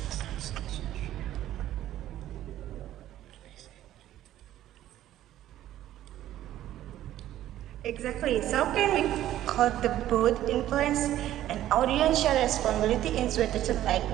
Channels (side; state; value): left; quieter; 13.1 dB